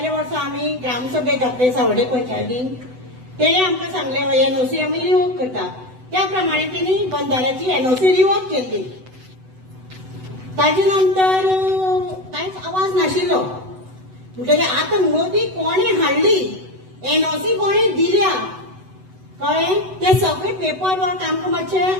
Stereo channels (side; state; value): left; late; 8.0 ms